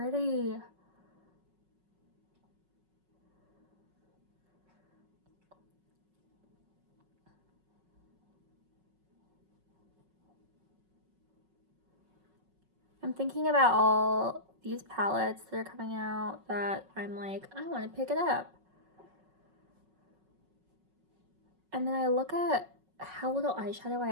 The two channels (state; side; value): late; left; 5.4 ms